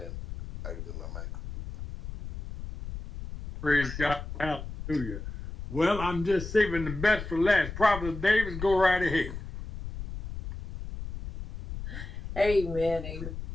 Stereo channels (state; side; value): noise; left; rumble, 9 dB below the sound